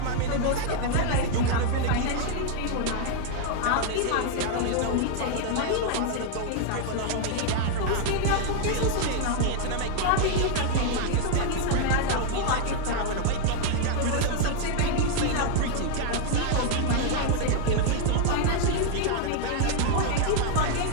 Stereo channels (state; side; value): different; both; correlation 0.00